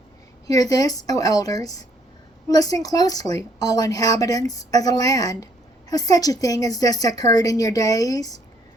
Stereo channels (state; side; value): normal; both; correlation 0.66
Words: Hear this, O elders. Listen closely, all inhabitants of the land. Has such a thing as this occurred in your days,